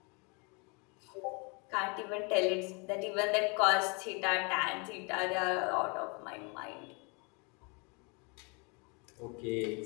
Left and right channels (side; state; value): right; quieter; 32.2 dB